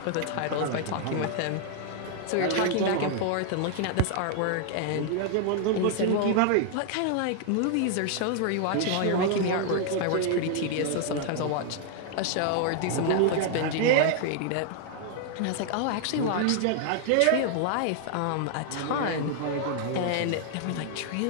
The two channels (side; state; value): both; different; correlation 0.00